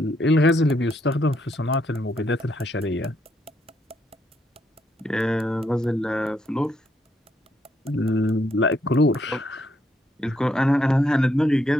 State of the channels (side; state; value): both; normal; correlation 0.75